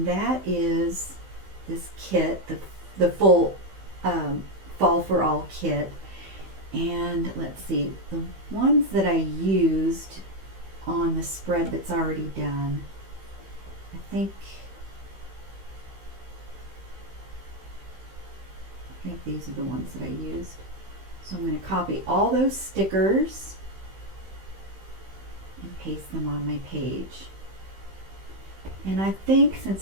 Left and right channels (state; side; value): late; left; 15 ms